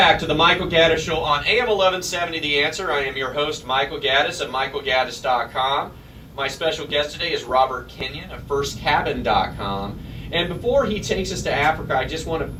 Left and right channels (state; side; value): identical; both; correlation 1.00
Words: to the Michael Gaddis Show on AM 1170 The Answer. I am your host, Michael Gaddis at michaelgaddis.com. My special guest today is Robert Kenyon of firstcabin.com. And before he takes us to Africa, I